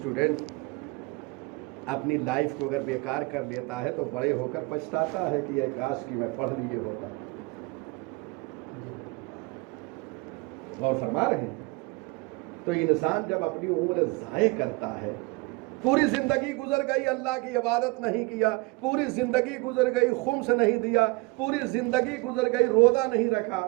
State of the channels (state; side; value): quieter; left; 25.7 dB